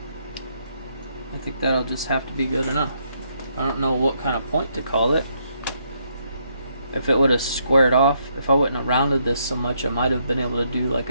I think that'll just have to be good enough. I don't know what kind of point to call it. If it would have squared off, if I wouldn't have rounded this so much, I might have been able to do like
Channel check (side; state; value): both; inverted; correlation -0.74